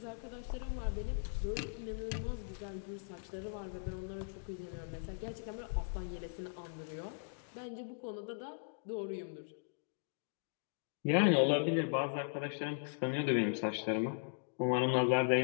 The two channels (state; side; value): silent; right; digital silence